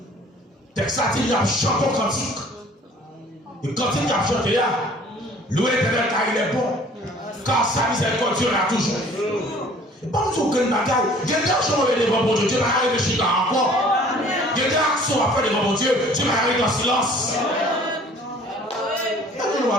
Texte il a chanté un cantique. Et quand il a chanté là, louer l'Éternel car il est bon, car sa miséricorde là toujours. Et pas nous aucun bagage. Il y a des actions devant mon Dieu, Dieu m'a arrêté de chier encore. Il y a des actions à faire devant mon Dieu, Dieu m'a arrêté dans silence. Et nous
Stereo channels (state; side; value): normal; both; correlation 0.52